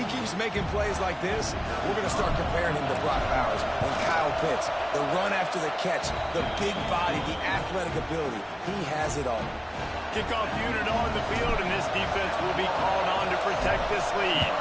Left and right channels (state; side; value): identical; both; correlation 1.00